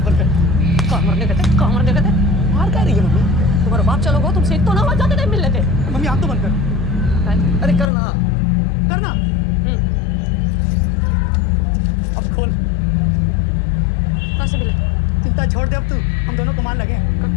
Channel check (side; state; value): right; drops out; at 7.9 s